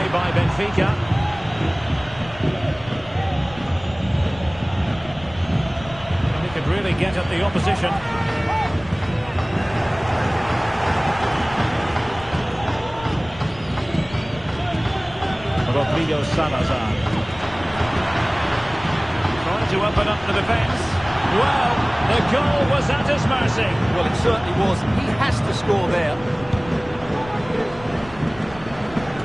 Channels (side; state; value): left; noise; rumble, 18 dB below the sound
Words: by Benfica. And he could really get at the opposition. Rodrigo Salazar. To open up the defence. Well, the goal was at his mercy. Well, it certainly was. He has to score there.